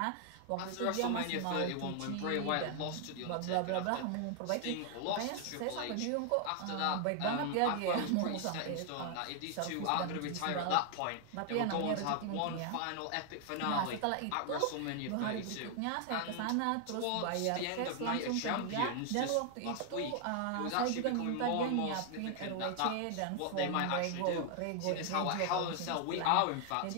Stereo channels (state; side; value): different; both; correlation 0.00